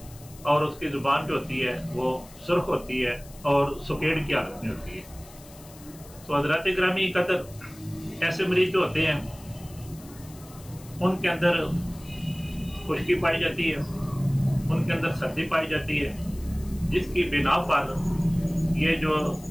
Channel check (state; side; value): noise; left; hiss, 21 dB below the sound